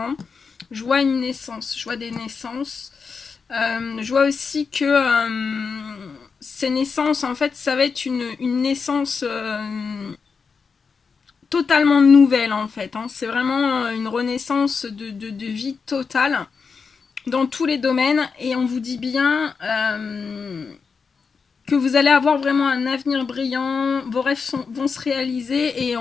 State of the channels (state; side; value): quieter; right; 5.3 dB